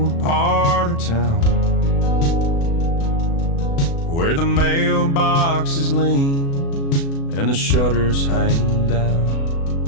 part of town, where the mailboxes lean and the shutters hang down.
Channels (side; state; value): right; late; 36 ms